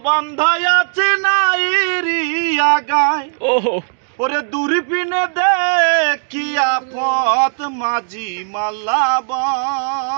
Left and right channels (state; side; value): silent; left; digital silence